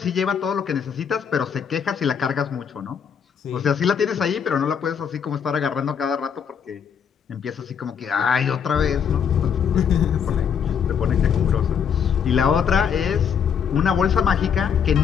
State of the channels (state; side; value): quieter; right; 7.4 dB